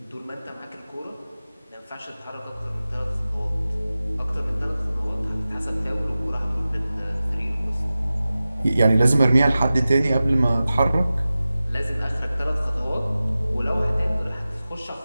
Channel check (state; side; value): inverted; both; correlation -0.96